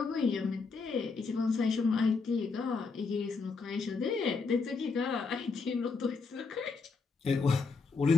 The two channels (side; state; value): right; quieter; 4.6 dB